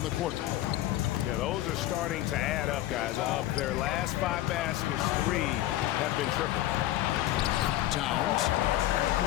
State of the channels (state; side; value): quieter; right; 14.5 dB